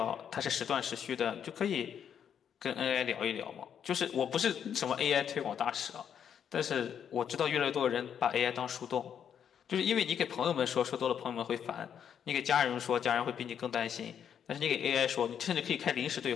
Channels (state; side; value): quieter; right; 8.4 dB